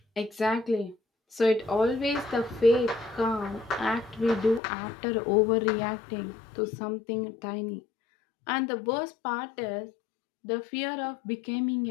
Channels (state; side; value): drops out; right; at 4.6 s